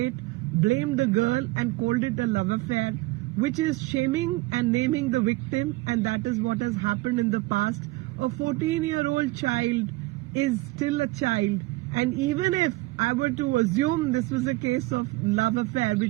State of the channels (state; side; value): quieter; left; 20.7 dB